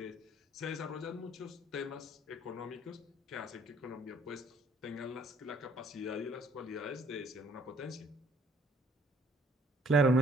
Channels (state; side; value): normal; both; correlation 0.61